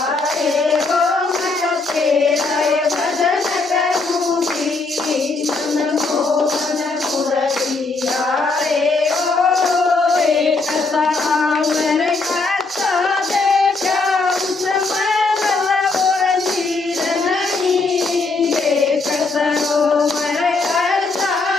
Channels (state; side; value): quieter; right; 3.7 dB